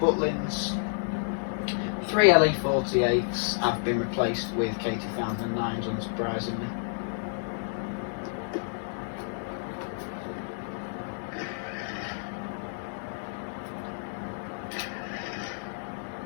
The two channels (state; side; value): silent; right; 58 dB below the other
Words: 3 LE48s have been replaced with K2009s, unsurprisingly.